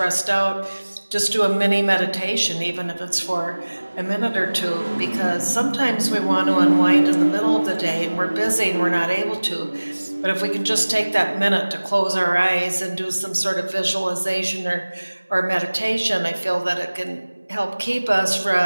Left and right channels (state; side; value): inverted; both; correlation -1.00